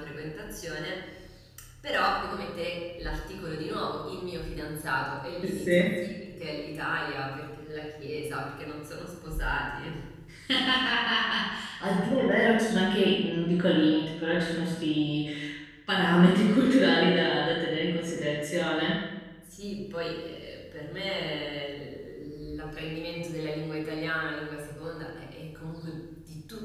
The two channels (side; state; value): both; identical; correlation 1.00